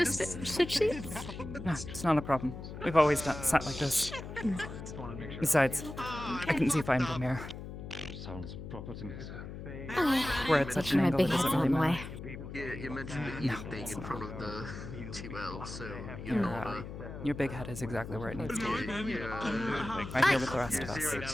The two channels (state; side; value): noise; left; hum, 10 dB below the sound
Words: to just- switch seats? No, it's not a problem. We've always sat like this. Besides, I can see fine from here. Sounds proper to me. We're at such an My angle big it head's doesn't on really the matter. way. You mentioned the eating thing in front of the 2L, so you Your, know your big head is exactly where it needs to be. yeah. Right here with the rest of us.